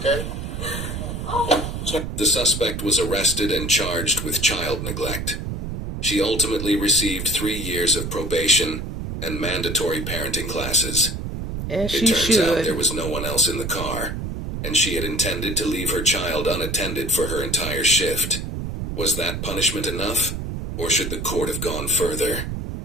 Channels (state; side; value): noise; right; rumble, 5 dB below the sound